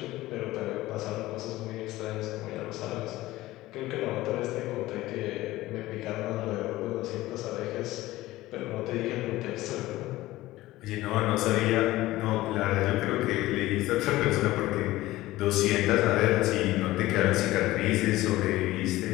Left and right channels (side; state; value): right; quieter; 17.2 dB